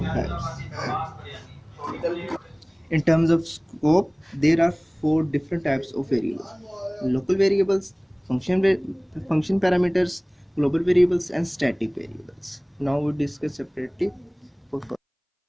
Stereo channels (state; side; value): identical; both; correlation 1.00